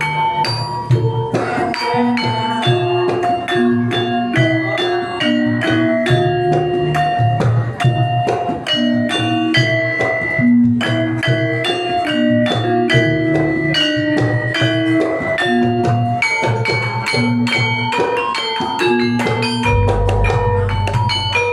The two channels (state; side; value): identical; both; correlation 1.00